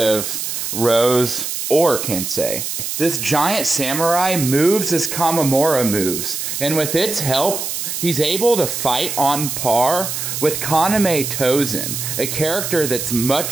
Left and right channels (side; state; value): right; noise; hiss, 4 dB below the sound